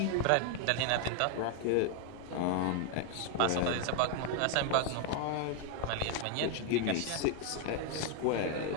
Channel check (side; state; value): both; different; correlation 0.00